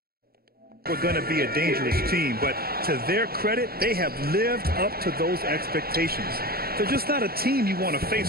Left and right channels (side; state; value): left; late; 0.44 ms